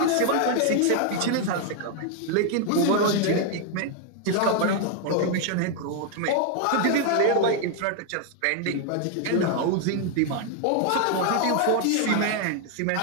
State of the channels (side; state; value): both; different; correlation 0.00